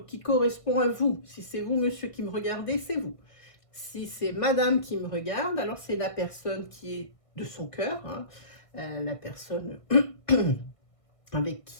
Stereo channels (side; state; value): right; late; 1.6 ms